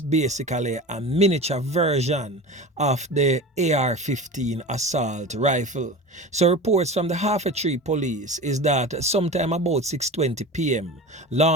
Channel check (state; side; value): normal; both; correlation 0.32